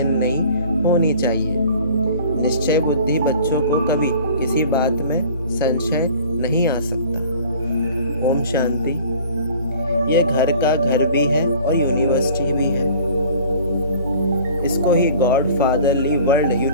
नहीं होनी चाहिए। निश्चय बुद्धि बच्चों को कभी किसी बात में संशय नहीं आ सकता। ओम शांति। ये घर का घर भी है और यूनिवर्सिटी भी है। इसको ही गॉड फादरली वर्ल्ड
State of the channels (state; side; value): inverted; both; correlation -0.47